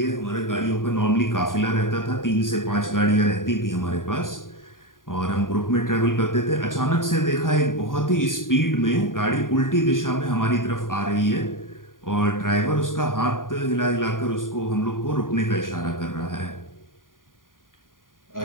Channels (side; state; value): right; late; 0.90 ms